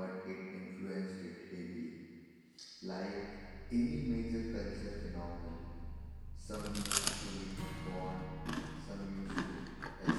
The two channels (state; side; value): identical; both; correlation 1.00